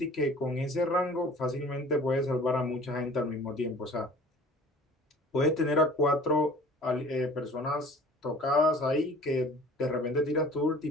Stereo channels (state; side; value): normal; both; correlation 0.47